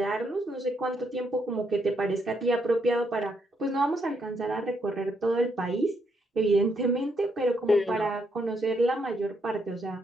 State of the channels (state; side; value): normal; both; correlation 0.76